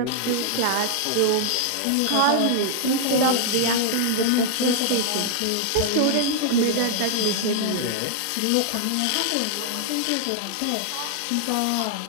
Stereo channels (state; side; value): different; both; correlation 0.00